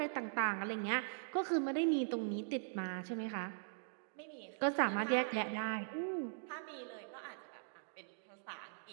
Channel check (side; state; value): left; silent; digital silence